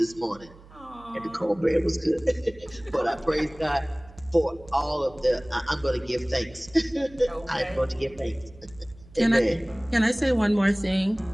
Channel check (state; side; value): noise; right; hum, 22 dB below the sound